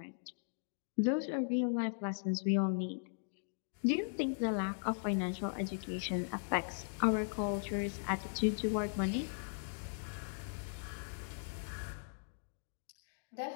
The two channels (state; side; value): silent; right; digital silence